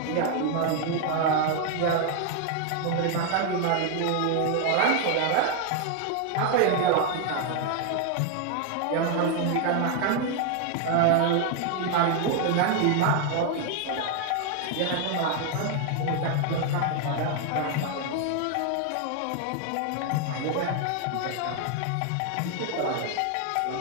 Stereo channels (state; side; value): different; both; correlation 0.00